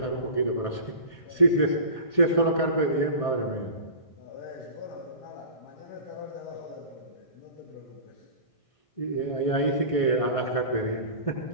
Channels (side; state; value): right; late; 1.6 ms